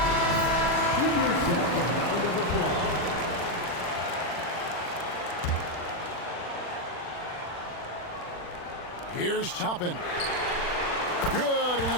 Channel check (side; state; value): right; late; 40 ms